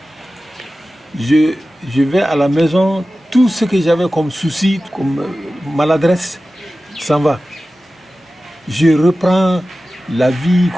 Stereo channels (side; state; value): both; normal; correlation 0.95